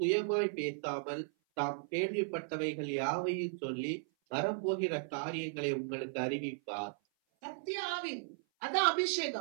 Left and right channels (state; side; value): silent; left; 54 dB below the other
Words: பேசாமல் தாம் கேள்விப்பட்டவைகள் யாவையும் சொல்லி வரப்போகிற காரியங்களை உங்களுக்கு அறிவிப்பார். சத்திய ஆவி, அதான்